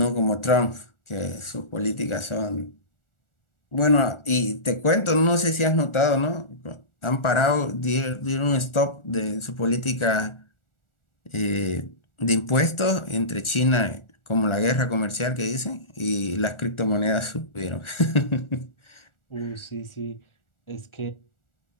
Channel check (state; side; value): late; right; 1.4 ms